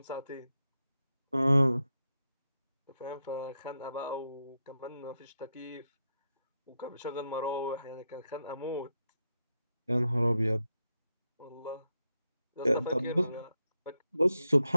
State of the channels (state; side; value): inverted; both; correlation -0.85